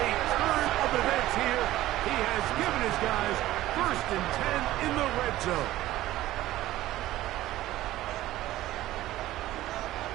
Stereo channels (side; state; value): left; quieter; 15.4 dB